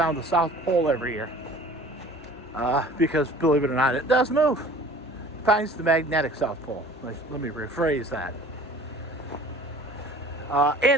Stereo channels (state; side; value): normal; both; correlation 0.46